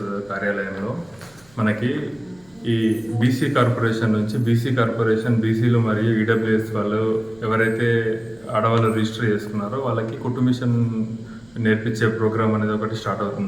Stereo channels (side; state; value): right; noise; rumble, 30 dB below the sound